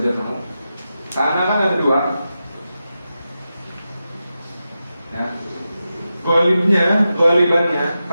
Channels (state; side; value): inverted; both; correlation -0.90